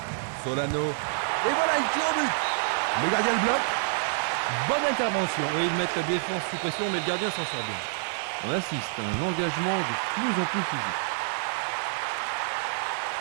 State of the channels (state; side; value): silent; left; digital silence